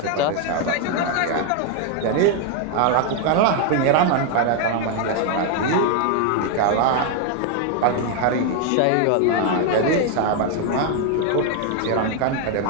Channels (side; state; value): both; different; correlation 0.01